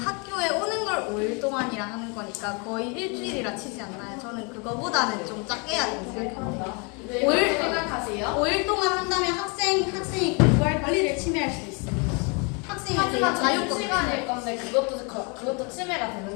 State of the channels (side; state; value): right; quieter; 33.3 dB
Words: 오는 걸 5일 동안이라 하는 거니까 거의 일주일이라 치지 않나요? 저는 그거보다는 좀 작게 해야 된다고 생각합니다. 왜 그렇게 생각하세요? 5일 동안 한다면 학생이 공부할 권리를 침해할 수 있습니다. 학생이 하지만 되게 자유 시간일 건데 그것도 침해가 되는